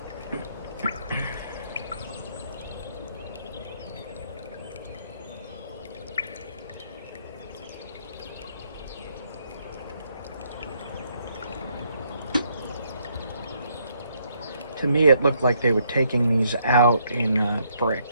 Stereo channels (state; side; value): inverted; both; correlation -0.71